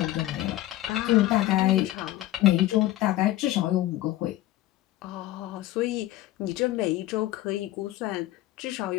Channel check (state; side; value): quieter; right; 15.5 dB